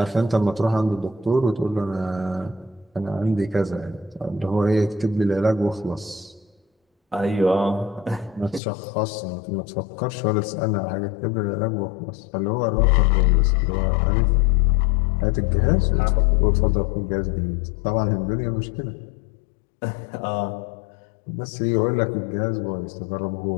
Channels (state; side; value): drops out; right; at 8.6 s